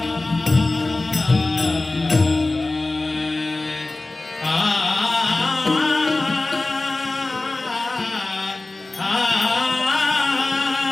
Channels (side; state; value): right; quieter; 3.0 dB